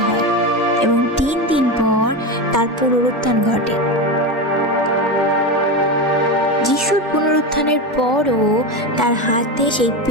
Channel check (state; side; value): normal; both; correlation 0.18